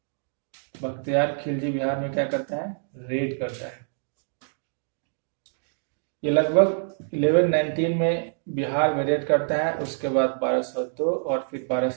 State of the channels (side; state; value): left; silent; digital silence